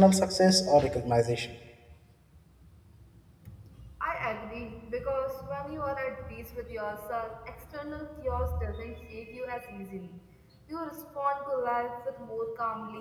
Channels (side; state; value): both; identical; correlation 1.00